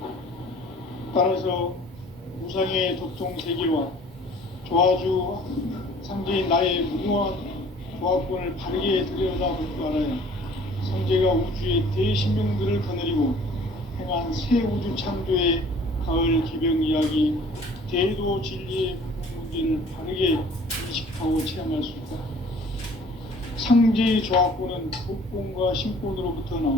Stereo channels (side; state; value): both; normal; correlation 0.51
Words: 따라서 우상의 도통 세계와 조화주 상제인 나의 무궁한 조합권을 바르게 들여다볼 줄 알아야 성제가 우주의 대신명들을 거느리고 행한 새 우주 창조의 가을 개병 이야기, 대도 진리의 분명 문제를 바르게 인식하고 체험할 수 있다. 상제의 조합권은 독권과 신권으로부터